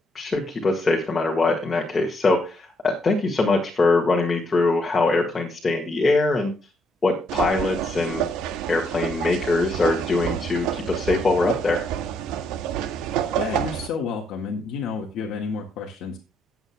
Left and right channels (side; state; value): both; normal; correlation 0.74